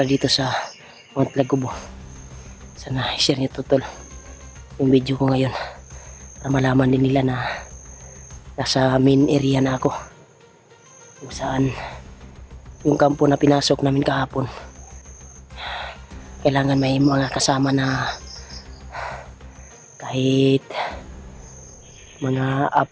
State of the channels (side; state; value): both; identical; correlation 1.00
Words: na dito sa Mount Lagubo. Sana i-share niyo to tol yung video ko ngayon para malaman din nila na nasa main area na ako, kung saan yung kampo na pinasok namin kahapon. Kailangan may mga kasama na kahit mga